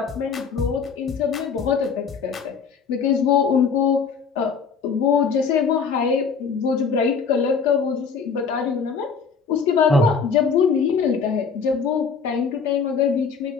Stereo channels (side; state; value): right; quieter; 5.8 dB